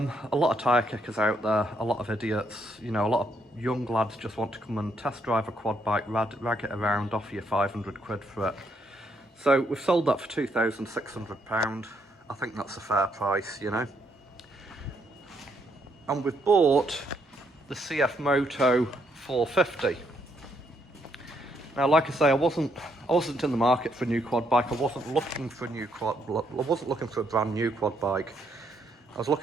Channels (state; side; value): normal; both; correlation 0.74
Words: lot of tyre kickers out there, a lot of idiots. You know, a lot of young lads just want to come and test drive a quad bike, rag it around, offer you 500 quid for it. So we've sold that for £2,600. I think that's a fair price, you know. And we've bought the CF Moto 450. Now, like I say, I wasn't in the market for a new quad bike. I wasn't looking for a brand new quad bike. I was